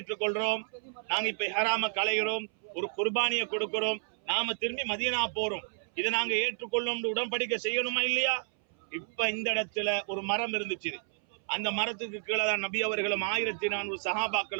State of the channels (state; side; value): silent; left; 57 dB below the other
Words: நாங்க இப்ப இஹ்ராம களைகிறோம், ஒரு குர்பானியை கொடுக்கிறோம், நாம திரும்பி மதீனா போறோம், இதை நாங்க ஏற்றுக்கொள்ளும், உடன்படிக்கை செய்யணுமா இல்லையா? இப்ப இந்த இடத்துல ஒரு மரம் இருந்துச்சு, அந்த மரத்துக்கு கீழே தான் நபி அவர்களும் 1400